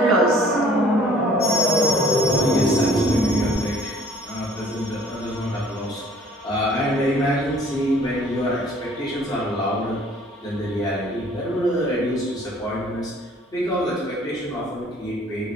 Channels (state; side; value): normal; both; correlation 0.55